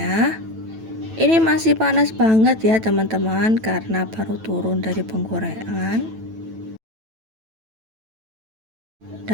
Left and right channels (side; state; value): left; late; 9.1 ms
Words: Ini masih panas banget ya teman-teman karena baru turun dari penggorengan.